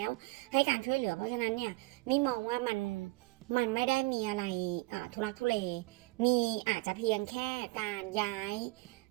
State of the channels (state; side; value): quieter; left; 22.9 dB